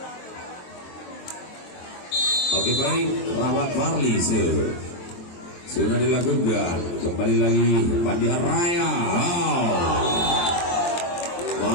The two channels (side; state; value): right; late; 23 ms